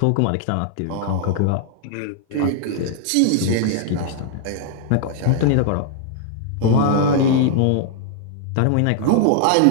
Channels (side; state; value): both; different; correlation -0.01